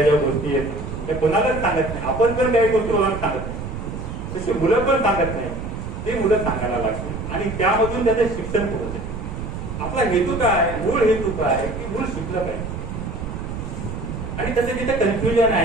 ज्या गोष्टी आहेत त्या कोणालाच सांगत नाही. आपण पण काही गोष्टी कोणाला सांगत नाही, तशी मुलं पण सांगत नाही. ते मुलं सांगायला लागते आणि त्यामधून त्याचं शिक्षण पुढे जाते. आपला हेतू काय, मूळ हेतू काय की मूळ शिकलं पाहिजे आणि त्याचं तिथे कन्फ्युजन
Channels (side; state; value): right; noise; rumble, 7 dB below the sound